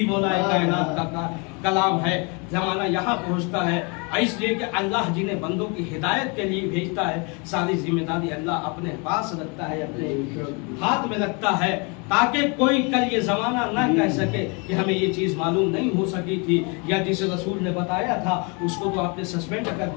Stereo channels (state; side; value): quieter; right; 32.2 dB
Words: मौलाए कायनात का कलाम है। जमाना यहाँ पहुँचता है इसलिए कि अल्लाह जिन्हें बंदों की हिदायत के लिए भेजता है सारी जिम्मेदारी अल्लाह अपने पास रखता है, अपने हाथ में रखता है, ताकि कोई कल ये जमाना न कह सके कि हमें ये चीज़ मालूम नहीं हो सकी थी, या जिसे रसूल ने बताया था उसको तो आपने सस्पेंड कर